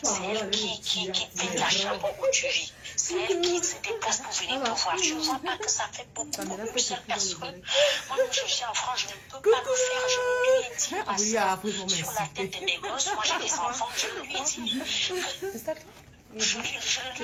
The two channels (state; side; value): identical; both; correlation 1.00